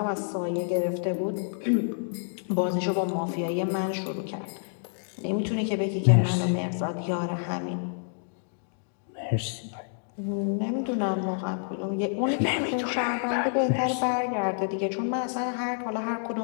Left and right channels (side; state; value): right; silent; digital silence